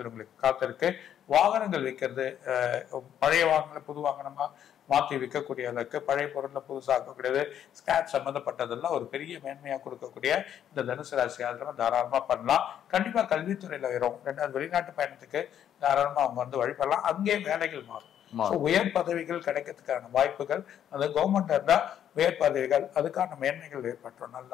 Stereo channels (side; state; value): right; quieter; 9.9 dB